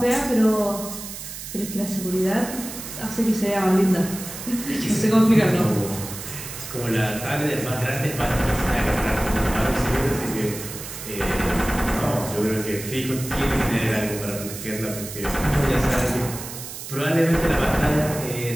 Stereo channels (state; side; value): noise; right; hiss, 10 dB below the sound